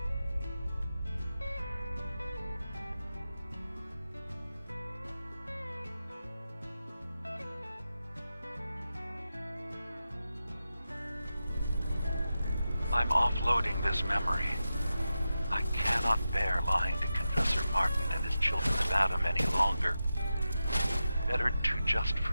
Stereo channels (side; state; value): both; inverted; correlation -0.91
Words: I'm offloading this memory. I cannot bear lying to Confessor Martin and his children of Adam any longer. Better to just